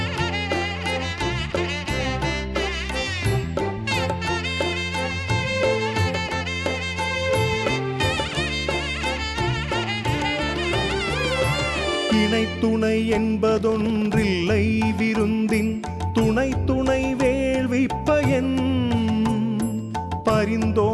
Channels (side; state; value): both; identical; correlation 1.00